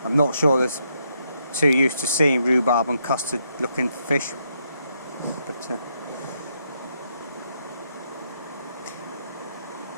I'm not sure there's too used to seeing rhubarb and custard looking fish, but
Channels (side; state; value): both; inverted; correlation -0.77